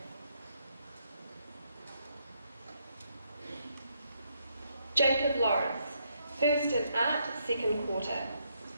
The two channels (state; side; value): inverted; both; correlation -0.76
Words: Jacob Lawrence, first in art, second quarter.